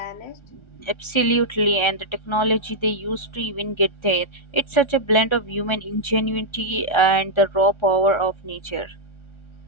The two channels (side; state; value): right; late; 1.3 ms